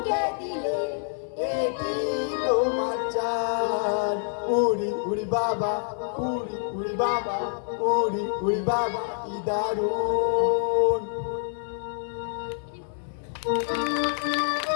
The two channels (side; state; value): right; silent; 60 dB below the other